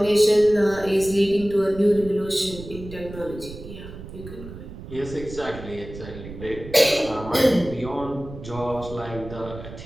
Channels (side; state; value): right; noise; rumble, 13 dB below the sound